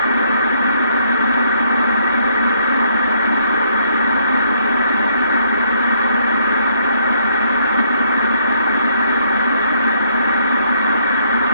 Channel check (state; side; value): inverted; both; correlation -0.69